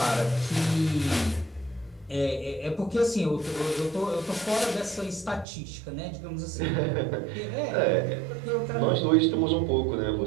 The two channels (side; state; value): left; drops out; at 5.5 s